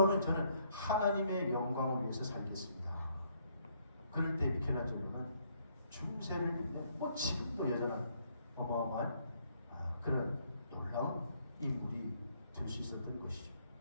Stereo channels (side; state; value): both; inverted; correlation -0.69